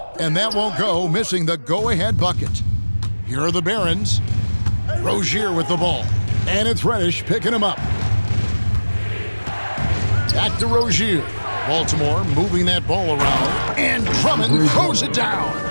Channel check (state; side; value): inverted; both; correlation -1.00